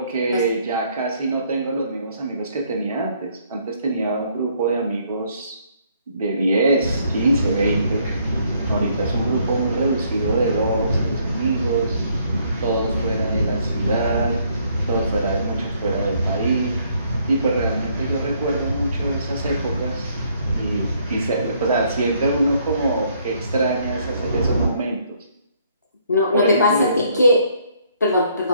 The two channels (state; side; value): inverted; both; correlation -0.67